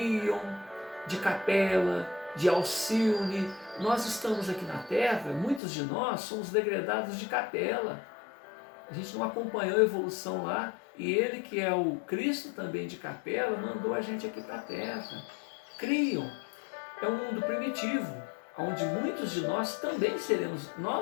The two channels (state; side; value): drops out; right; at 5.6 s